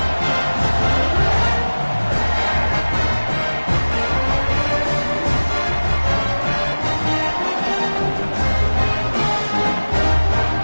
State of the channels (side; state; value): both; inverted; correlation -1.00